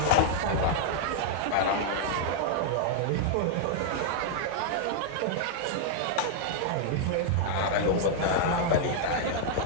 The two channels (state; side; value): different; both; correlation -0.01